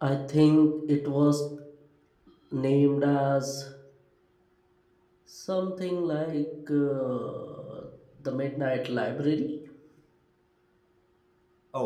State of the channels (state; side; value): identical; both; correlation 1.00